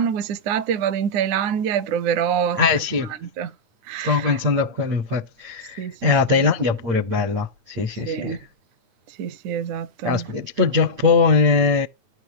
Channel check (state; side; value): late; left; 8.7 ms